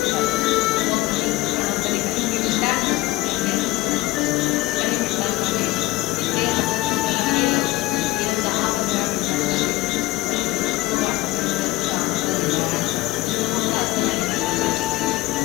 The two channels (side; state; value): right; quieter; 18.5 dB